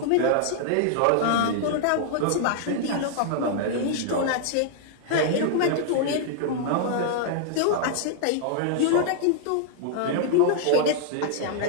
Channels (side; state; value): both; different; correlation -0.01